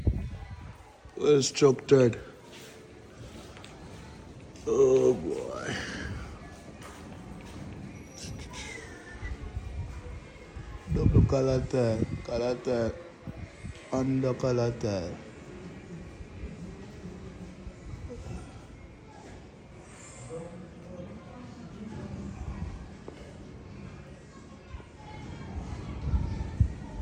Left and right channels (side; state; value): both; identical; correlation 1.00